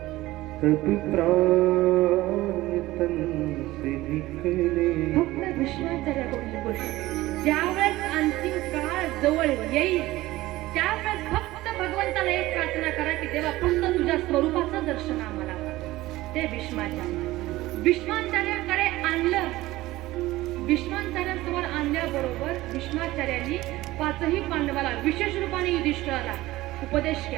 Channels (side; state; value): left; quieter; 17.6 dB